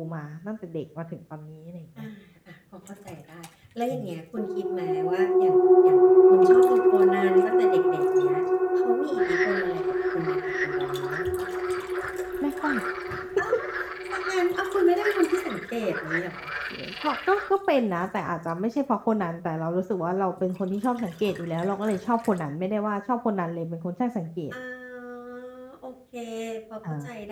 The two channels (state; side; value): identical; both; correlation 1.00